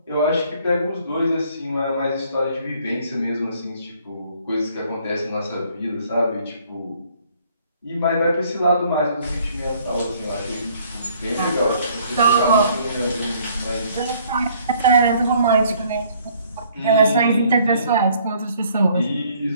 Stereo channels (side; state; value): both; inverted; correlation -0.61